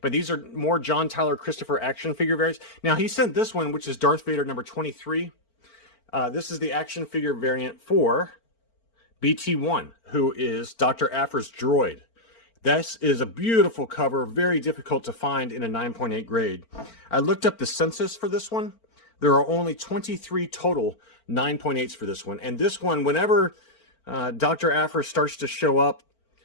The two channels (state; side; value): late; right; 4.4 ms